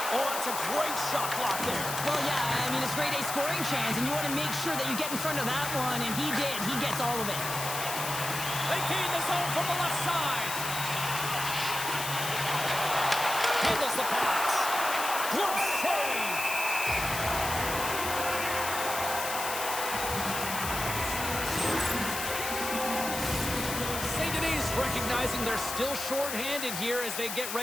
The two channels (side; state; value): left; noise; hiss, 4 dB below the sound